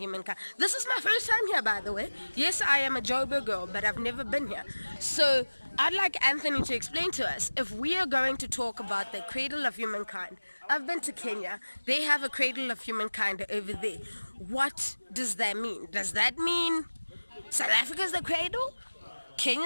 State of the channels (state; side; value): inverted; both; correlation -1.00